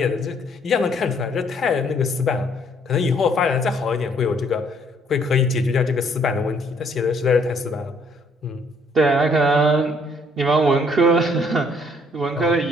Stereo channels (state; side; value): normal; both; correlation 0.65